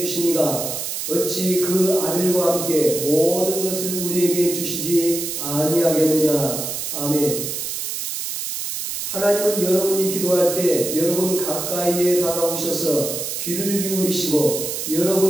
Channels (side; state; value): right; noise; hiss, 4 dB below the sound